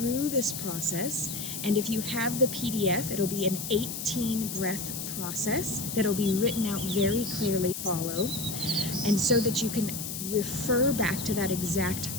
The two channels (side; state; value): left; noise; hiss, 6 dB below the sound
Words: this process. And if you have the PDF, it'll be an 18 breath process that'll be written out very clearly. Follow, and so that you can refer back to that exact